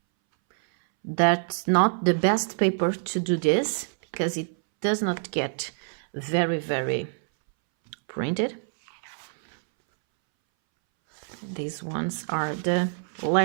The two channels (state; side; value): silent; left; 61 dB below the other